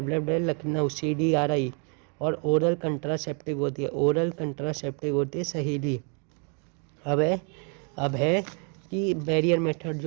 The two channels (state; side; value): quieter; left; 38.9 dB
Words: लखनऊ CDRI, और ओरल कंट्रासेप्टिव होती है, ओरल कंट्रासेप्टिव होती है सहेली। अब है कि बैरियर मेथड